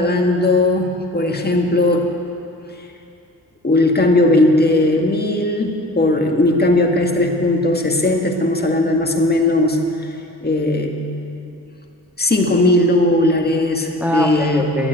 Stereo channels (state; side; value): normal; both; correlation 0.42